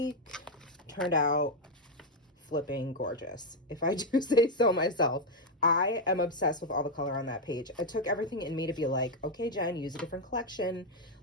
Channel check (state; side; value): normal; both; correlation 0.03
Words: turned out flipping gorgeous, if I do say so myself. I am obsessed with all the color on that page. It took everything in me to be like, okay, Jen, use a different collection.